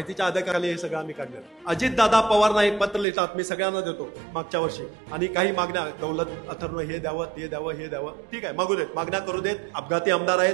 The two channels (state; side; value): drops out; left; at 3.1 s